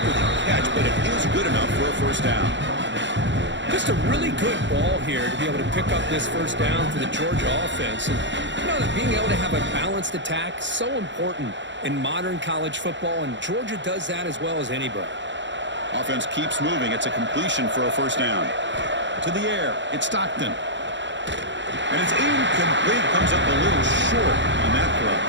the catch, but it is good enough for a 1st down. Just a really good ball here to be able to pick up this 1st down for the Georgia offense. And you know that being able to have a balanced attack is so important in modern college football, and Georgia does that as well as anybody. Offense keeps moving. It's a completion for a 1st down. To the air, it's Stockton. And it's incomplete. Comes up a little short on that throw.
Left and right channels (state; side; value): late; left; 0.53 ms